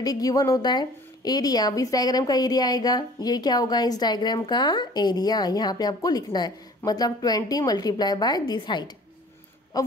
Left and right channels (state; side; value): normal; both; correlation 0.49